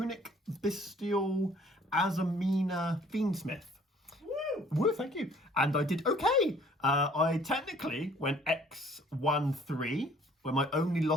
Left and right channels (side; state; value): both; normal; correlation 0.56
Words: Bystial, Azamina, Fiend Smith. Woo, thank you. And I did okay. I technically went X-1-3, where my only